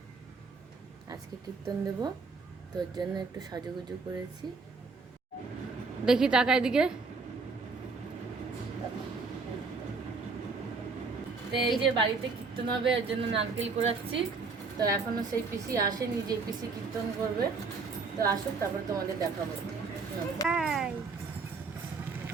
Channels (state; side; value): quieter; left; 4.5 dB